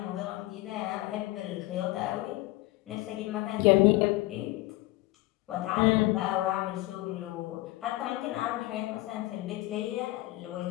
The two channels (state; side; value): quieter; right; 18.8 dB